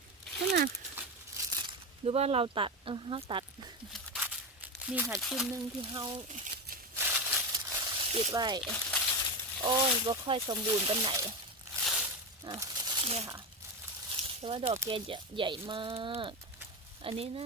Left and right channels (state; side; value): normal; both; correlation 0.17